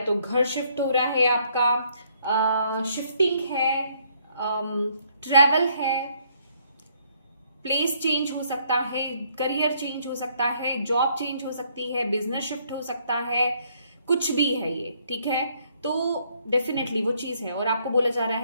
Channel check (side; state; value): both; inverted; correlation -0.68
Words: तो घर शिफ्ट हो रहा है, आपका शिफ्टिंग है, ट्रैवल है, प्लेस चेंज हो सकता है, करियर चेंज हो सकता है, जॉब चेंज हो सकती है, बिजनेस शिफ्ट हो सकता है, कुछ भी है ये, ठीक है। तो डेफिनेटली वो चीज है और आपको बोला जा रहा